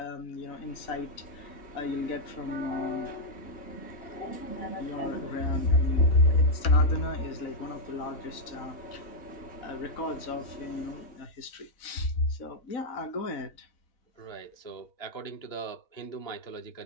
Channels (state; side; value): late; right; 4.0 ms